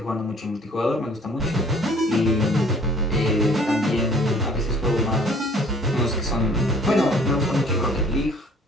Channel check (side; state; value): both; normal; correlation 0.55